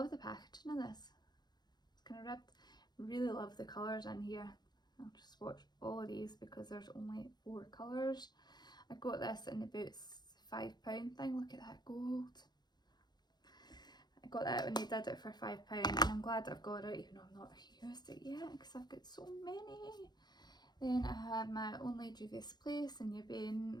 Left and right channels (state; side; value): late; right; 0.20 ms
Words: the packaging of this, it's kind of ribbed. Really love the colours in here. I'll just swatch all of these because there's only 4 colours. I got this in about £5 thing. Look at that gold. I got that when they did it for £5, and I'm glad I've got it even though I've not used it yet because I've got so many. Then I have my Only Juvia's Place in Yabane,